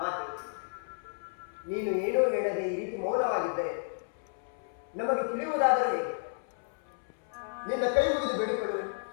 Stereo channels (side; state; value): right; silent; 57 dB below the other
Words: ಮಾತೆ, ನೀನು ಏನೂ ಹೇಳದೆ ಈ ರೀತಿ ಮೌನವಾಗಿದ್ದರೆ ನಮಗೆ ತಿಳಿಯುವುದಾದರೆ ಹೇಗೆ? ನಿನ್ನ ಕೈ ಮುಗಿದು ಬೇಡಿಕೊಳ್ಳುವೆ.